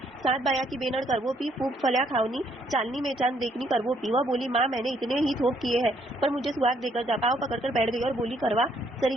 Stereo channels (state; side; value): normal; both; correlation 0.69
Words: 7 बाया की बेनर करवो पी, फूक फलिया खावनी, चालनी में चांद देखनी करवो पी। वह बोली, माँ मैंने इतने ही थोक किए हैं, पर मुझे सुहाग देकर जा। पाँव पकड़कर बैठ गई और बोली, करवा